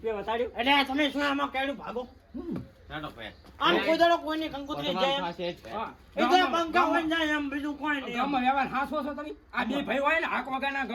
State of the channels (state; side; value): identical; both; correlation 1.00